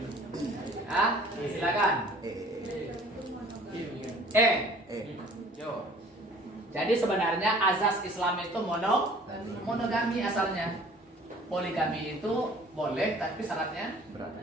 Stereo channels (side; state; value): both; normal; correlation 0.51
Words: Silakan. Jadi sebenarnya azas Islam itu monogami asalnya. Poligami itu boleh tapi syaratnya